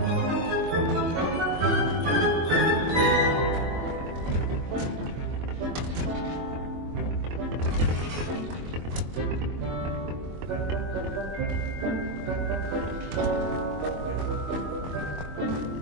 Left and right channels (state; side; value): late; left; 23 ms